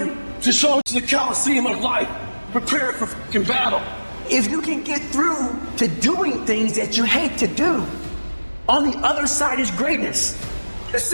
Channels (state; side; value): inverted; both; correlation -1.00